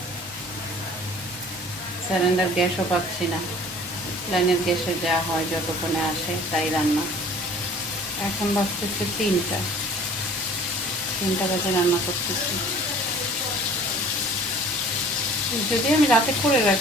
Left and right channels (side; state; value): both; normal; correlation 0.48